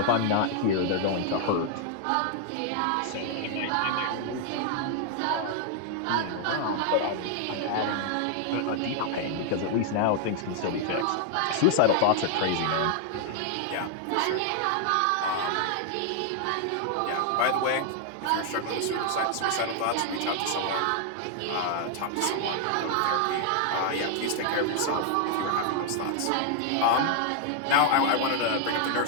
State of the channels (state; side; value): different; both; correlation 0.00